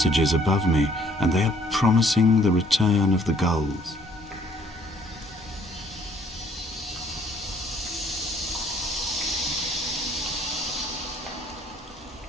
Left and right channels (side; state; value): both; normal; correlation 0.61